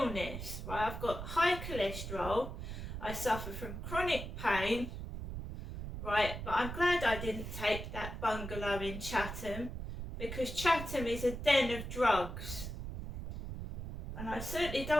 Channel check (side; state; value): right; noise; rumble, 7 dB below the sound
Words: right? I've got high cholesterol. I suffer from chronic pain, right? But I'm glad I didn't take that bungalow in Chatham because Chatham is a den of drugs, and I certainly